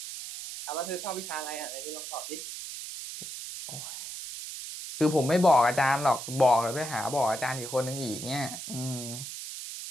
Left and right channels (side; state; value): right; noise; hiss, 8 dB below the sound